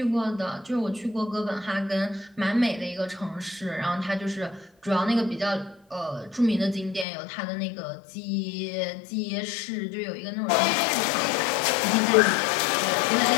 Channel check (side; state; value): right; drops out; at 7.1 s